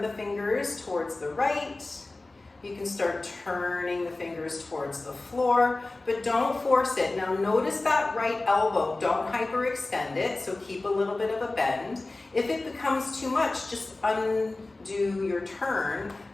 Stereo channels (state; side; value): quieter; right; 3.1 dB